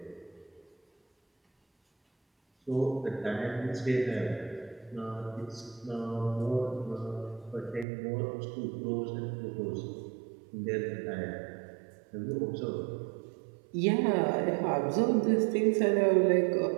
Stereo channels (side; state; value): left; drops out; at 7.9 s